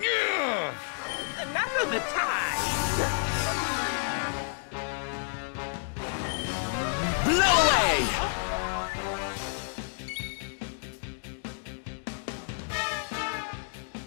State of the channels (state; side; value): silent; right; digital silence